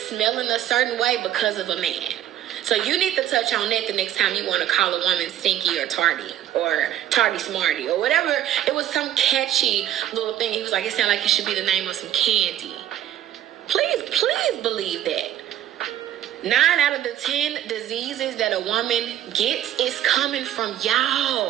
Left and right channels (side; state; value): left; quieter; 11.8 dB